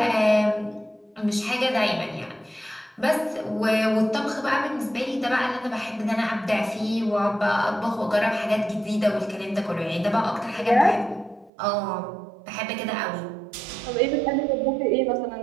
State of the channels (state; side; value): drops out; left; at 11.5 s